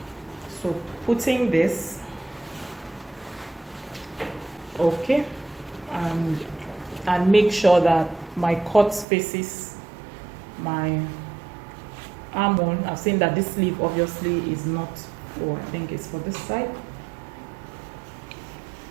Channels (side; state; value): left; drops out; at 9.1 s